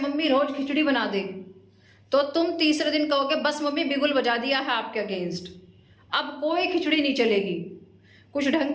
रोज खिचड़ी बना दे तो तुम तीसरे दिन कहोगे बस मम्मी बिगुल बजा दिया है आपके अगेंस्ट, अब कोई खिचड़ी नहीं चलेगी। कुछ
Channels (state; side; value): identical; both; correlation 1.00